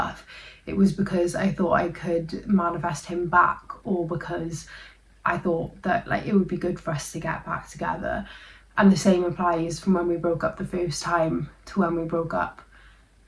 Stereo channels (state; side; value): identical; both; correlation 1.00